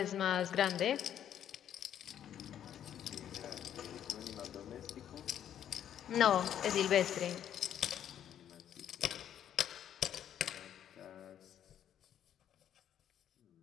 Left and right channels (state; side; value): quieter; right; 10.1 dB